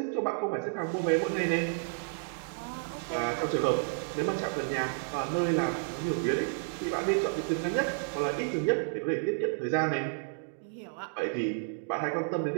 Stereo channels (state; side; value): silent; left; digital silence